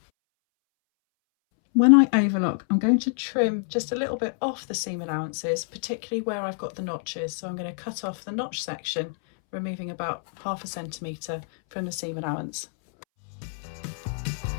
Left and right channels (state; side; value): silent; right; 60 dB below the other